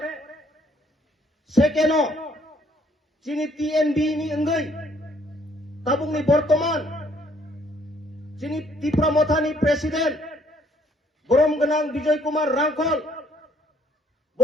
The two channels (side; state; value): both; normal; correlation 0.65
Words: সেকেন্ড যিনি টিএনবি নি অঙ্গৈ তাবুংনি বর্তমান যিনি ত্রিপুরা মথানি প্রেসিডেন্ট বরম গনাং বিজয় কুমার রাংখল ব